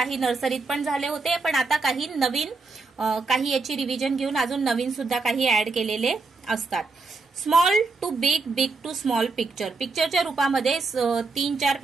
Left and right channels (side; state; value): left; quieter; 4.0 dB